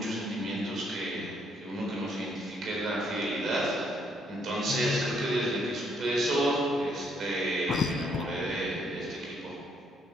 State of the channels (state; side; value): normal; both; correlation 0.70